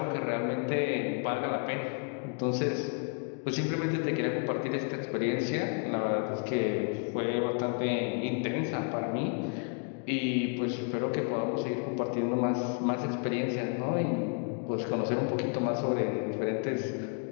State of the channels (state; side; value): quieter; right; 38.1 dB